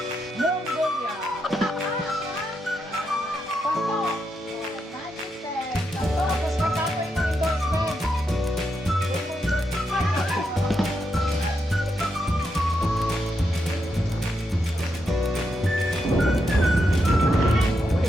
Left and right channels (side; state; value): both; normal; correlation 0.83